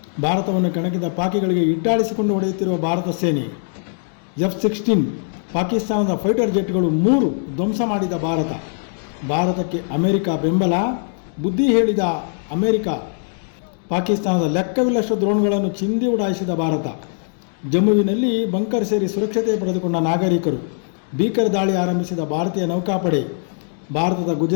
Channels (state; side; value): silent; right; digital silence